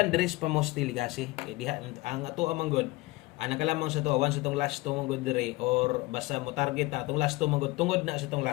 dress pa mo still kasi. Eh, diha, ang ato amang good. Ana ka lamang sa to, once itong last to mong good dire, or basta mo target na, itong last to mong good, tungod na sa itong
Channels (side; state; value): right; quieter; 21.6 dB